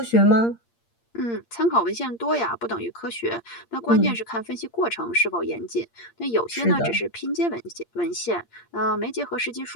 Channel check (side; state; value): right; late; 8.6 ms